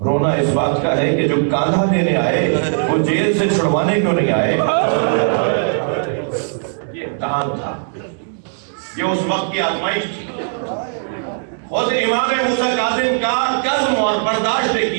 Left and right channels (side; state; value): left; silent; digital silence